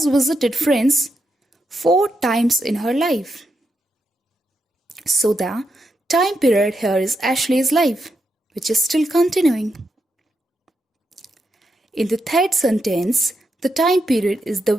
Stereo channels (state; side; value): normal; both; correlation 0.83